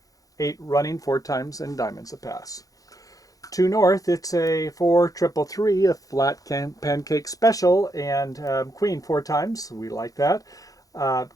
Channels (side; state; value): right; late; 0.17 ms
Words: 8 running 4 times in diamonds a pass. To north, it's a 4 triple 3, a flat pancake special, and queen 4 times. We like that.